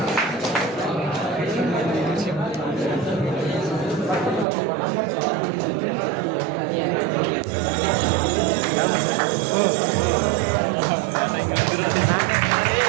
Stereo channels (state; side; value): drops out; left; at 4.5 s